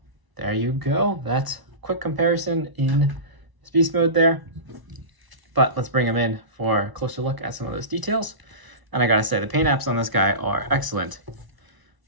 there you go. That's a quick comparison in his beast mode there. But let's bring him in for a closer look at some of those details. And I gotta say, the paint apps on this guy are excellent.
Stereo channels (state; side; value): late; left; 1.0 ms